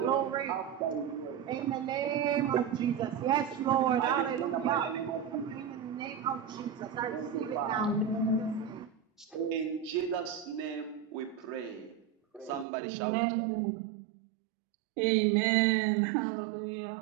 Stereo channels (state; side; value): drops out; left; at 12.7 s